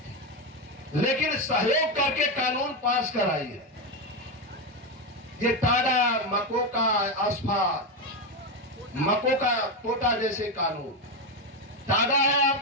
लेकिन सहयोग करके कानून पास कराई है। ये टाडा, मकोका, अस्फा, मकोका, पोटा जैसे कानून। टाडा है,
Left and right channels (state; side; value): normal; both; correlation 0.10